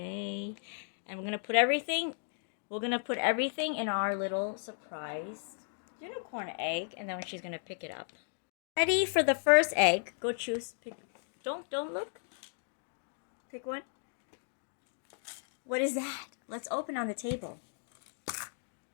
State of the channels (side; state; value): right; silent; digital silence